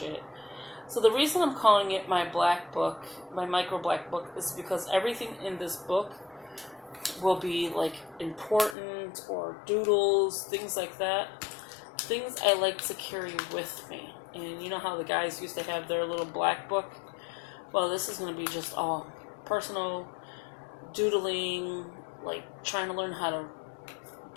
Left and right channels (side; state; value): right; drops out; at 8.8 s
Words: So the reason I'm calling it my black book, my micro black book, is because everything in this book will be like important or doodles, things like that. Things I like to carry with me. And you know how the guys used to have their little black book? Well, this is going to be just all personal doodling, like trying to learn how to